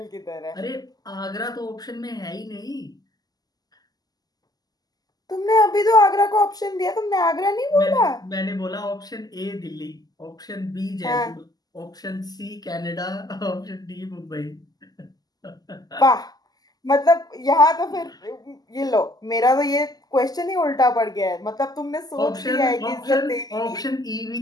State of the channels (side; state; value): right; late; 0.19 ms